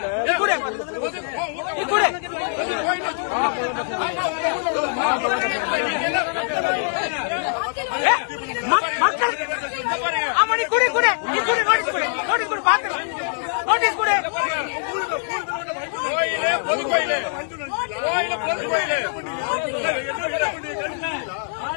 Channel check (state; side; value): silent; right; digital silence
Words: நீ குடு நீ குடு மக்கள். ஆமா நீ குடு குடு நீ குடு நோட்டீஸ் குடு நோட்டீஸ் குடு பாத்துக்கலாம். நோட்டீஸ் குடு.